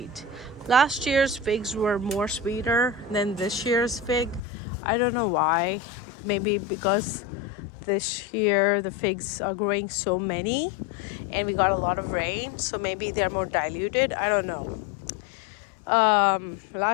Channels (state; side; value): drops out; right; at 4.4 s